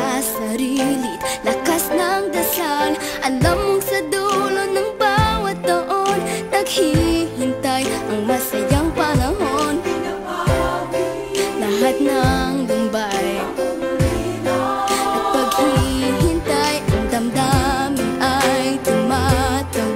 sarili, lakas ng dasal. Alam mong sa dulo ng bawat taon, naghihintay ang masayang panahon. Lahat ng lumbay at paghihintay, ang damdamin ay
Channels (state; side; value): identical; both; correlation 1.00